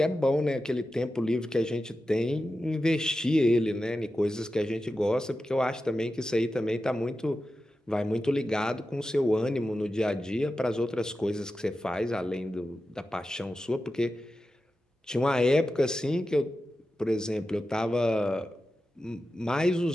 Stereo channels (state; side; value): normal; both; correlation 0.92